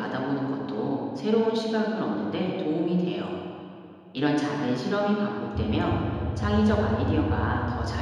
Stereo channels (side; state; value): both; identical; correlation 1.00